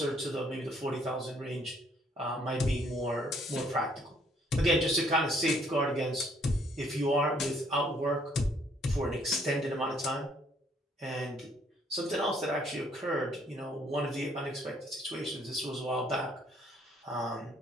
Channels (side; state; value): both; normal; correlation 0.65